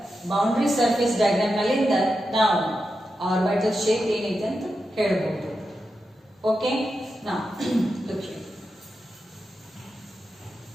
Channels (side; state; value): both; normal; correlation 0.89